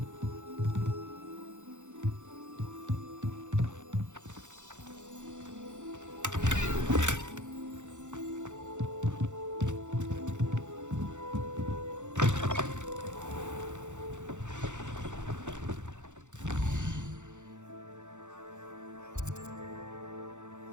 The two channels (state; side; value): late; left; 0.85 ms